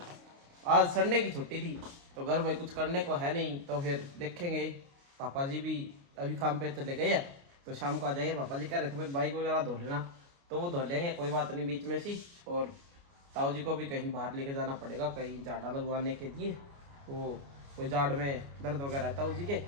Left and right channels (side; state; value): left; late; 29 ms